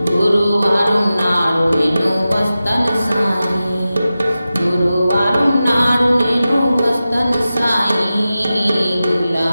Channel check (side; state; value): both; inverted; correlation -0.94